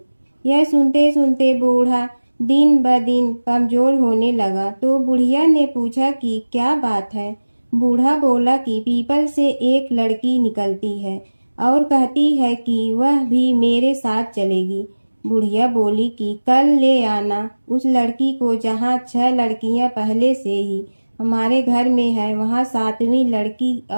यह सुनते सुनते बूढ़ा दिन ब दिन कमजोर होने लगा। तो बुढ़िया ने पूछा कि क्या बात है। बूढ़ा बोला कि पीपल से एक लड़की निकलती है और कहती है कि वह भी मेरे साथ चलेगी। बुढ़िया बोली कि कल ले आना उस लड़की को, जहाँ 6 लड़कियां पहले से ही हमारे घर में है, वहाँ 7वीं लड़की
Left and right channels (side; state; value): both; inverted; correlation -1.00